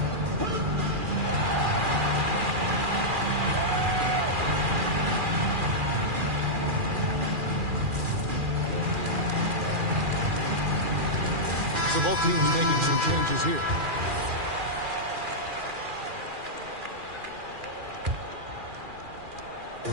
So both teams making some changes here.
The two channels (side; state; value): left; late; 2.4 ms